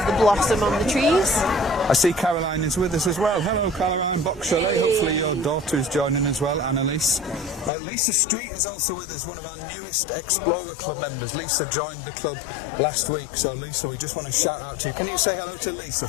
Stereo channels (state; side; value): drops out; right; at 7.7 s